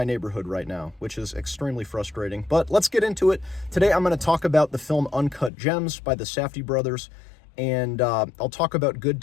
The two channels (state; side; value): drops out; right; at 5.5 s